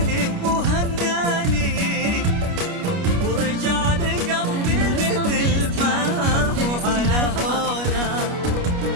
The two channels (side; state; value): left; late; 29 ms